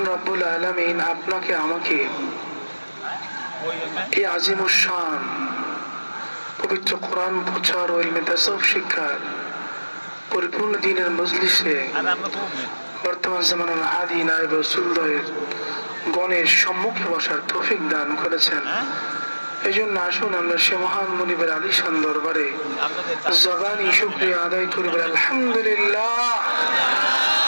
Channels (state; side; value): inverted; both; correlation -1.00